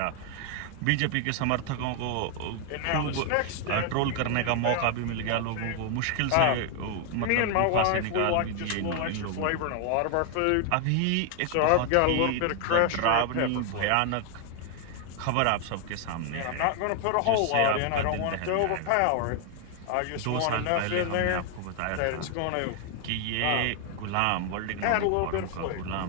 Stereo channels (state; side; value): different; both; correlation 0.00